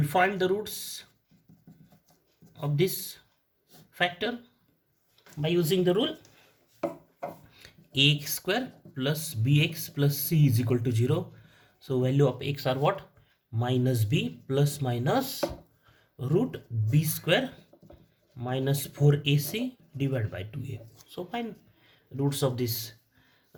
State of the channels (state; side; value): identical; both; correlation 1.00